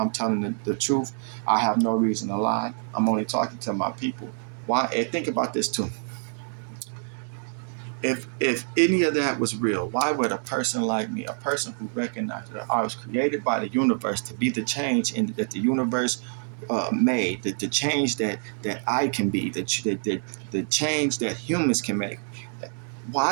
telling the truth. I have no reason to lie. I'm only talking to my people. Why? And think about this too. If any of that was real, why would a person like me, a person who recognized that I was created by the universe to be the change that the universe made, the change that I can be, the change that humans can make,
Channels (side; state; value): left; silent; 61 dB below the other